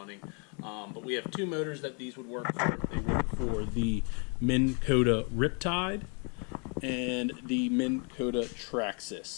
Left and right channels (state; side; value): quieter; right; 37.3 dB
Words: But we have two motors that these would work for. They work for the Minn Kota Riptide and the Minn Kota